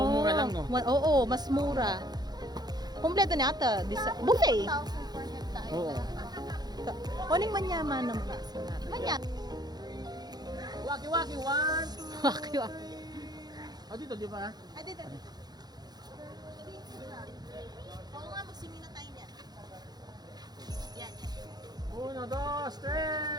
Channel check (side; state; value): left; late; 0.19 ms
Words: mura lang no. Oo, mas mura. Kompleto niya ata. Buffet. 1,400 tayo. Oo. Kuning manyaman naman. Manya. Waki-waki one. Waki. Oh dito di ba? Ay, dito.